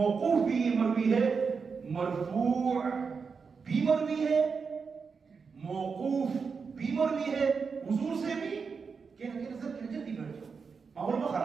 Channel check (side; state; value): left; quieter; 5.4 dB